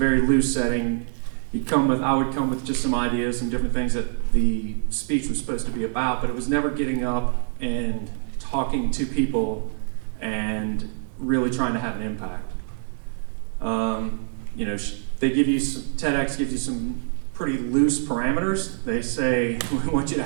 loose setting. I would come with just some ideas and different things that the speech was supposed to be about, but it was never getting up and talking to people and really trying to have an impact. They give you TEDx gives you some pretty loose parameters. They say, we want you to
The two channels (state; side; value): silent; left; digital silence